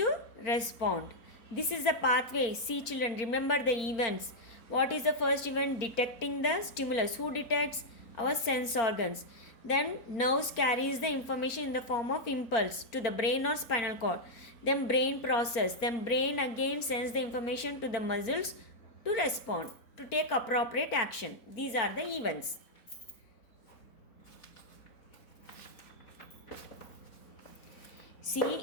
respond. This is the pathway. See children, remember the events. What is the first event? Detecting the stimulus. Who detects? Our sense organs. Then nerves carries the information in the form of impulse to the brain or spinal cord. Then brain process. Then brain again sends the information to the muscles to respond, to take appropriate action. These are the events. See,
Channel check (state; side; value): late; right; 4.4 ms